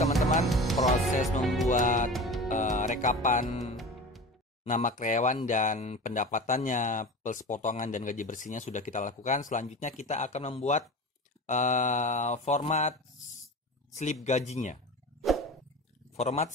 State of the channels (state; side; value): normal; both; correlation 0.32